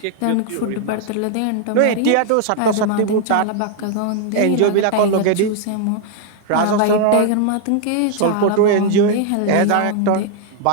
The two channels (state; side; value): different; both; correlation 0.00